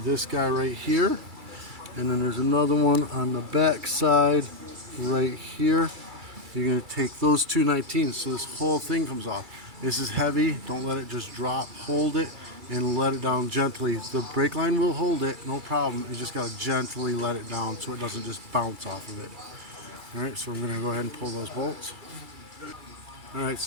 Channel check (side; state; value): left; late; 2.3 ms